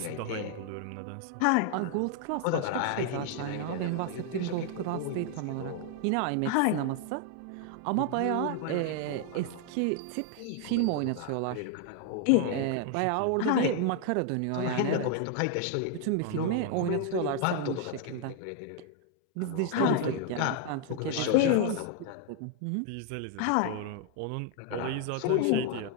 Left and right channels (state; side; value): different; both; correlation 0.00